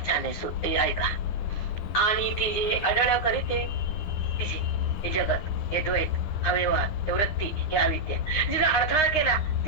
छान आहे. ऐका आणि ती जे अडळ करीते तिचे हे जगत हे द्वैत हा व्यवहार हे वृत्ती हे अविद्या जिला अडथळा केला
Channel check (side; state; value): right; late; 9.7 ms